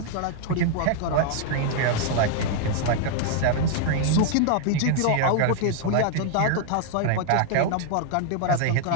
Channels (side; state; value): both; different; correlation 0.00